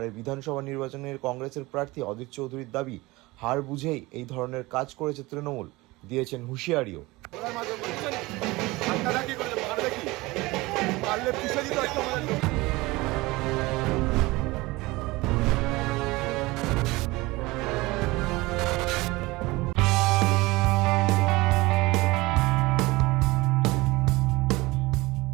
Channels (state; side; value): quieter; left; 21.5 dB